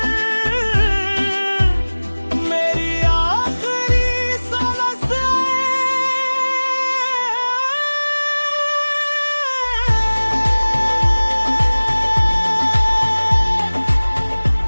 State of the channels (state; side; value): inverted; both; correlation -1.00